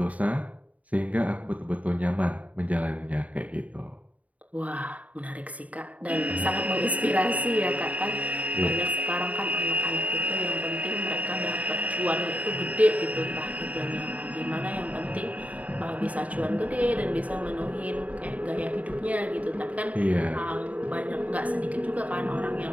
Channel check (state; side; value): late; left; 0.070 ms